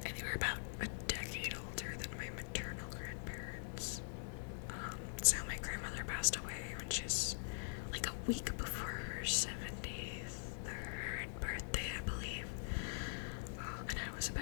And they were about a decade older than my maternal grandparents. So my grandmother passed away when she was like a week before her 73rd birthday, I believe. And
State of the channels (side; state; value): right; silent; digital silence